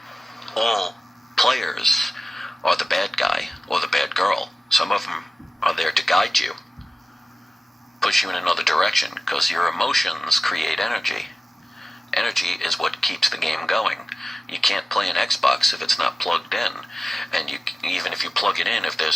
all players are the bad guy or the bad girl. Some of them are there to guide you, push you in another direction, because your emotions create energy. Energy is what keeps the game going. You can't play an Xbox if it's not plugged in. And even if you plug it in, if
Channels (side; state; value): both; normal; correlation 0.95